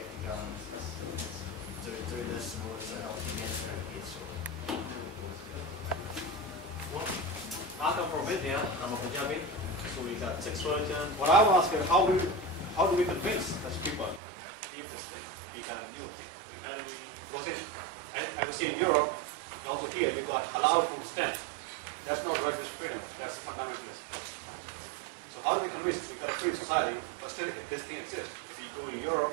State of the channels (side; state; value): left; drops out; at 14.2 s